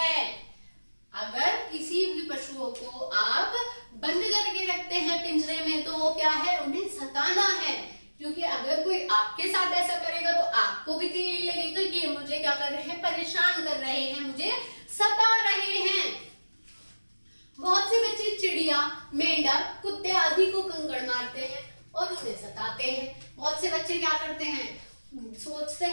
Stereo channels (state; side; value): inverted; both; correlation -1.00